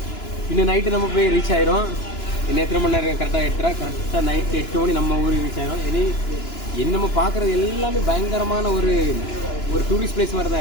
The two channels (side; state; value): right; late; 2.9 ms